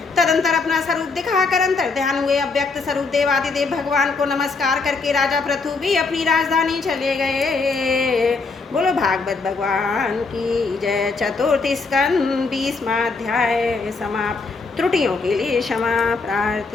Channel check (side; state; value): right; quieter; 4.2 dB